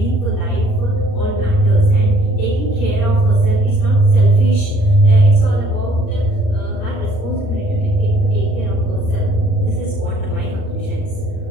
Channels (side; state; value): right; late; 37 ms